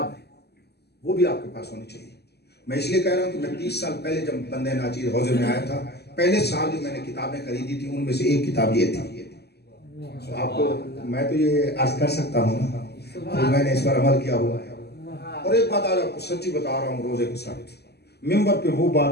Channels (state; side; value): late; right; 0.47 ms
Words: ہے، وہ بھی آپ کے پاس ہونی چاہیے۔ میں اس لیے کہہ رہا ہوں کہ میں 30 سال پہلے جب بندہ ناچیز حوضے میں آیا تھا، پہلے سال جو میں نے کتابیں خریدی تھی ان میں سے ایک کتاب یہ تھی۔ آپ کو میں تو یہ عرض کر سکتا ہوں نا، تو میں نے اس پر عمل کیا ہوا ہے۔ اور ایک بات آج آپ کو سچی بتا رہا ہوں روزے کے ساتھ، ممبر پہ وہ